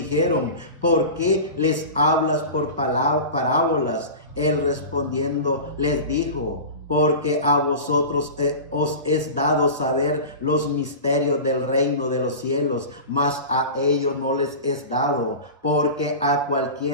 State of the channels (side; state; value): both; inverted; correlation -0.31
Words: ¿por qué les hablas por parábolas? Él respondiendo les dijo: porque a vosotros os es dado saber los misterios del reino de los cielos, mas a ellos no les es dado, porque a